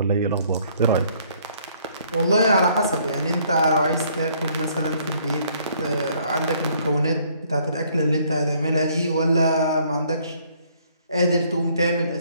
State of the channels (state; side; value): inverted; both; correlation -0.63